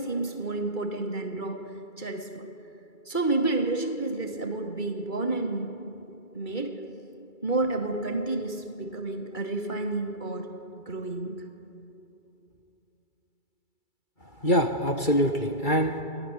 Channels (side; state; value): right; late; 2.3 ms